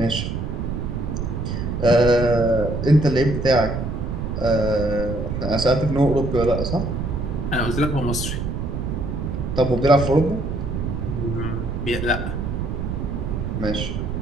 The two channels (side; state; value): right; noise; rumble, 3 dB below the sound